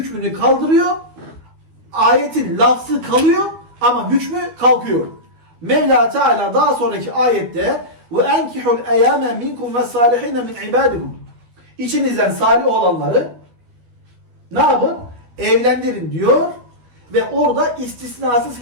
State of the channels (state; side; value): late; left; 12 ms